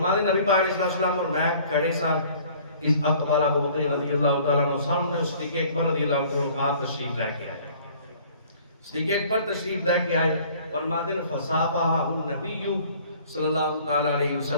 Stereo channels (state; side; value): inverted; both; correlation -0.53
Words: دیں نبی پاک علیہ السلام اور میں کھڑے ساتھ اس اقبال ابو بکر رضی اللہ تعالیٰ عنہ سامنے صدیق اکبر رضی اللہ تعالیٰ عنہ آپ تشریف لے کے آئے، صدیق اکبر تشریف لے کے آئے، فرما دیں فصافحہ النبی صلی اللہ تعالیٰ علیہ